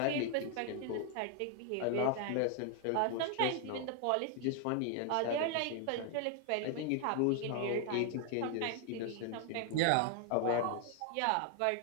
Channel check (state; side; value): different; both; correlation 0.00